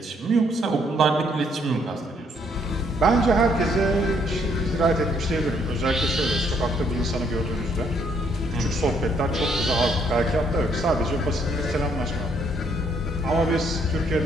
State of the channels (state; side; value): normal; both; correlation 0.69